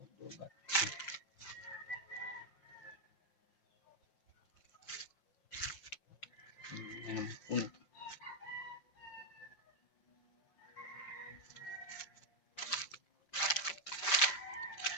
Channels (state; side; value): late; right; 5.1 ms